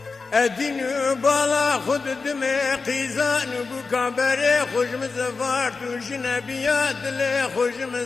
ادین بالا خود دم قیزان بو کابره خوش مزفار تو جنبیات لی خوش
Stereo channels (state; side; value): quieter; right; 4.4 dB